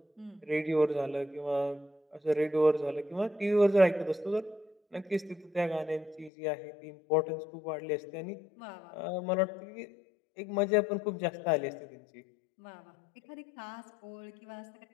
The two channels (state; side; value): drops out; right; at 6.3 s